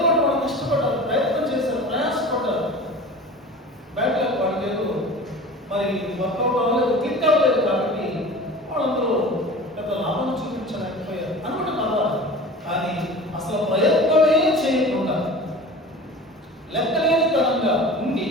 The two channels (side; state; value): both; normal; correlation 0.38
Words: ఒకటి వాళ్ళు కష్టపడ్డారు, ప్రయత్నం చేశారు, ప్రయాసపడ్డారు, బ్యాక్ లక్ వాళ్ళకేదో మరి వర్కౌట్ అవ్వలేదు, క్లిక్ అవ్వలేదు, కాబట్టి వాళ్ళందరూ పెద్ద లాభం చూపించలేకపోయారు అనుకుంటే పర్వాలేదు. కానీ అసలు ప్రయత్నమే చేయకుండా లెక్కలేనితనంగా ఉండి